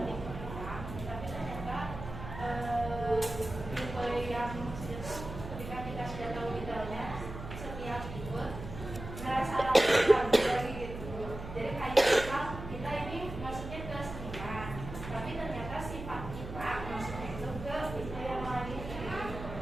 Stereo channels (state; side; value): noise; right; hum, 9 dB below the sound